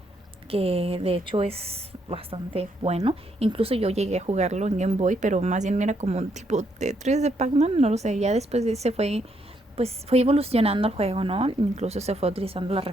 que de hecho es bastante bueno. Incluso yo llegué a jugarlo en Game Boy, pero más bien era como un tipo Tetris de Pac-Man, no lo sé. Ya después de ese fue evolucionando el juego, ¿no? Incluso se fue utilizando las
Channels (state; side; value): normal; both; correlation 0.74